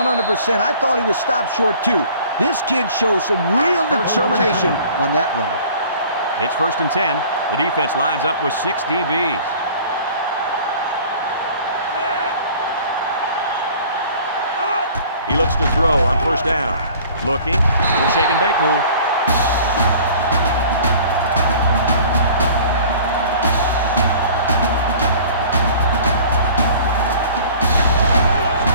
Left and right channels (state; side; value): inverted; both; correlation -0.48